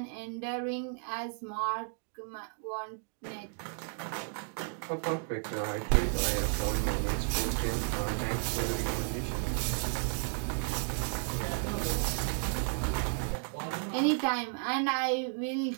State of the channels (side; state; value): left; silent; 56 dB below the other